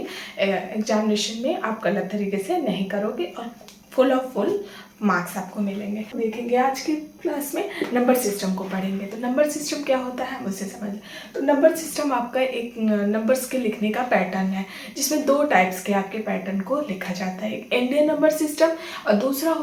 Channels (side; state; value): both; identical; correlation 1.00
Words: एग्जामिनेशन में आप गलत तरीके से नहीं करोगे और फुल मार्क्स आपको मिलेंगे। देखेंगे आज की क्लास में नंबर सिस्टम को पढ़ेंगे। तो नंबर सिस्टम क्या होता है मुझसे समझ। तो नंबर सिस्टम आपका एक नंबर्स के लिखने का पैटर्न है, जिसमें 2 टाइप्स के आपके पैटर्न को लिखा जाता है। एक इंडियन नंबर सिस्टम और दूसरा